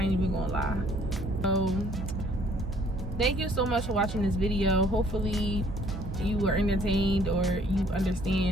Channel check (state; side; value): normal; both; correlation 0.60